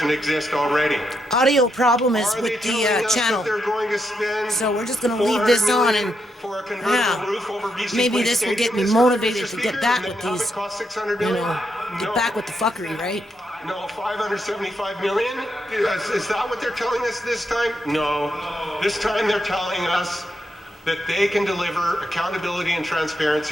exist already. Audio problem is with the channel. So we're just going to leave this on and maybe this will get me motivated to get back with these, get back with the fuckery, right? No, 575 million? Is that what they're telling us this time? No. This time they're telling us that they can deliver accountability and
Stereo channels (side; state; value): both; normal; correlation 0.81